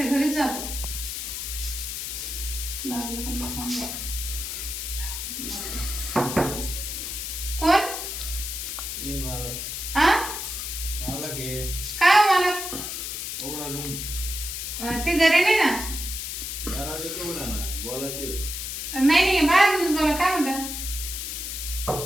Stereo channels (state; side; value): noise; left; hiss, 5 dB below the sound